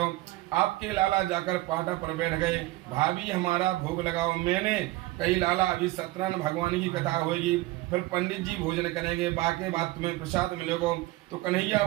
आपके लाला जाकर पाटा पर बैठ गए, भाभी हमारा भोग लगाओ। मैंने कही लाला अभी सत्यनारायण भगवान की कथा होगी, फिर पंडित जी भोजन करेंगे, बाकी बात तुम्हें प्रसाद मिलेगा। तो कन्हैया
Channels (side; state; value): left; quieter; 18.6 dB